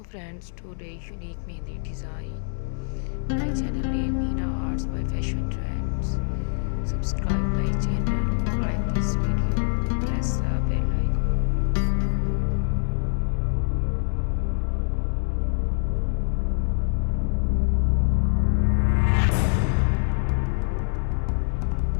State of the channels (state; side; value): silent; right; digital silence